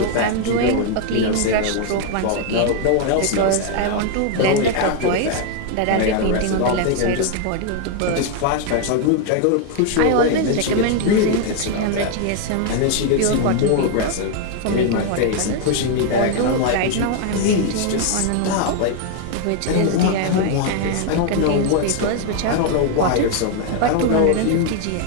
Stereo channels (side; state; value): both; different; correlation 0.00